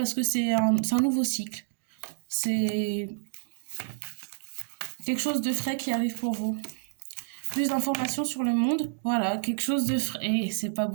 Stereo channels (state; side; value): silent; left; digital silence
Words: que c'est un nouveau cycle. C'est quelque chose de frais qui arrive pour vous. Plus d'informations sur le monde, voilà, quelque chose de frais. Et c'est pas